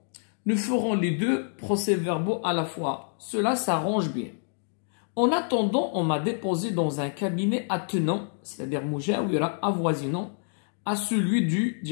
Nous ferons les 2 procès-verbaux à la fois. Cela s'arrange bien. En attendant, on m'a déposé dans un cabinet attenant, c'est-à-dire mujawira, avoisinant, à celui du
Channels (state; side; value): silent; right; digital silence